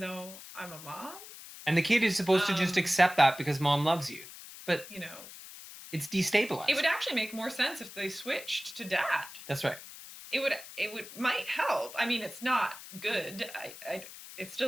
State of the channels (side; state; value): left; noise; hiss, 15 dB below the sound